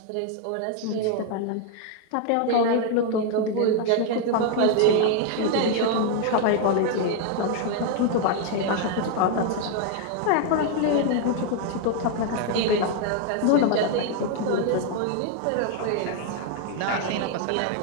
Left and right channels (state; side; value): different; both; correlation 0.00